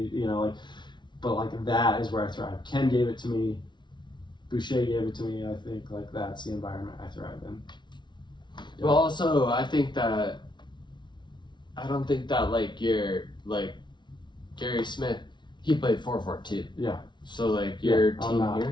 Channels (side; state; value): right; late; 0.22 ms